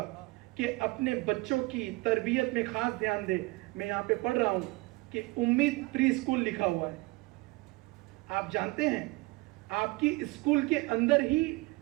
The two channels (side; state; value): left; quieter; 23.3 dB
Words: कि अपने बच्चों की तरबियत में खास ध्यान दे। मैं यहां पे पढ़ रहा हूं कि उम्मीद प्री स्कूल लिखा हुआ है। आप जानते हैं आपकी स्कूल के अंदर ही